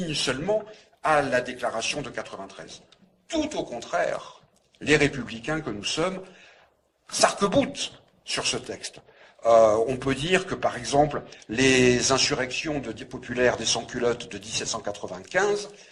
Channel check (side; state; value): both; identical; correlation 1.00